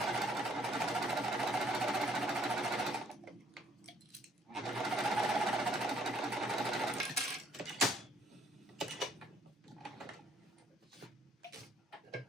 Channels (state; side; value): normal; both; correlation 0.63